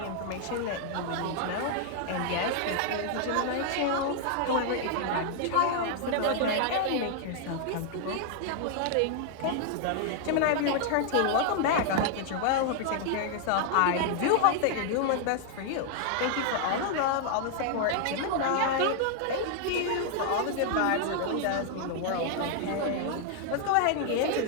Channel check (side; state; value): both; different; correlation 0.00